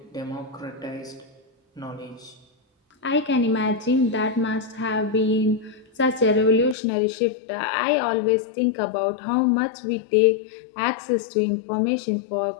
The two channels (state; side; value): drops out; right; at 6.8 s